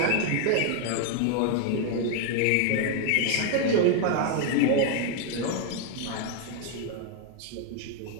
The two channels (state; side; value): different; both; correlation 0.00